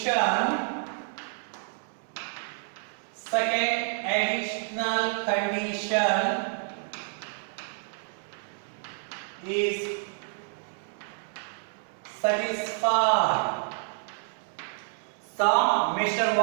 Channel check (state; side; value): silent; left; 59 dB below the other